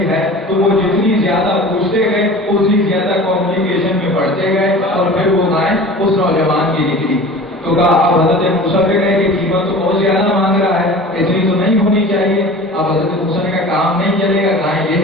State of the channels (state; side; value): normal; both; correlation 0.39